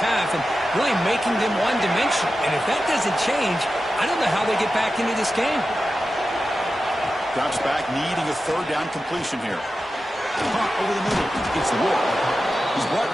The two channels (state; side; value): normal; both; correlation 0.92